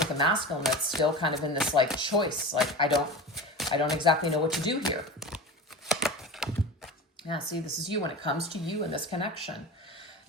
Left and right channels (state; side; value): normal; both; correlation 0.30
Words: a masculine that's still kind of in this like choice. Like, I don't exactly know what to do here. Yeah, see, this is you when it comes to you in this connection.